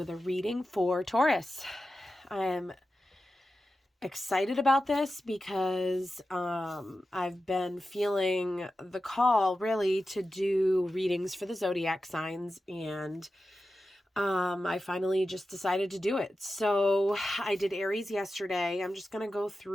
a reading for Taurus. I'm excited about this because I've been feeling the call really to do readings for the zodiac signs, and I finally just decided to do it. So I did Aries yesterday. I'm just going to go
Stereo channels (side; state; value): both; normal; correlation 0.92